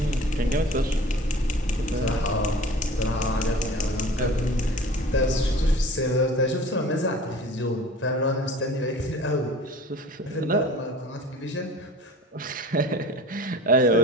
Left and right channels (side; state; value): both; normal; correlation 0.43